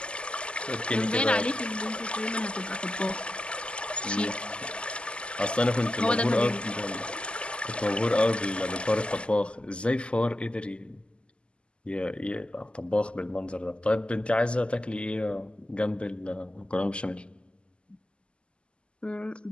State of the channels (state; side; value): late; right; 0.052 ms